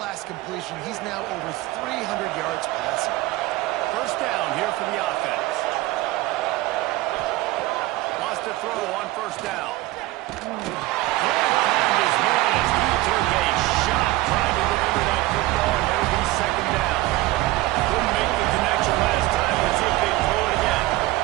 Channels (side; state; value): left; quieter; 18.4 dB